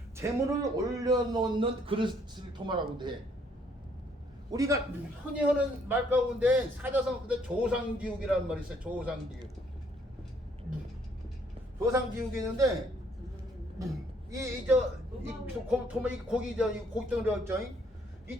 재물을 올려놓는 그릇을 도마라고 해. 우리가 흔히 하는 말 가운데 사자성 근데 조상지옥이라는 말이 있어요. 조상지옥. 조상지옥이 있는데 도마 이 고기죠. 이 고기덩어리였죠. 이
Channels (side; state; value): both; normal; correlation 0.66